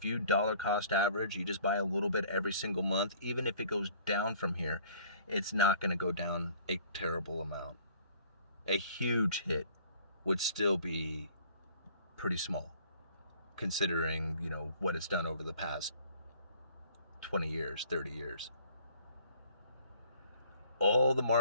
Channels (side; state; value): both; inverted; correlation -0.54